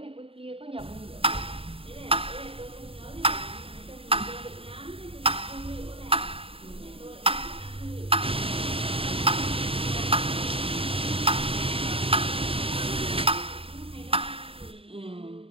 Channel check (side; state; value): left; late; 0.27 ms